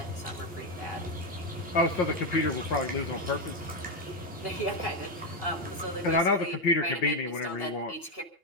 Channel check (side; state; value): right; late; 2.8 ms